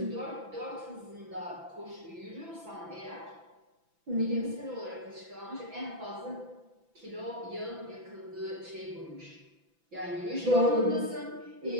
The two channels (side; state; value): left; late; 6.0 ms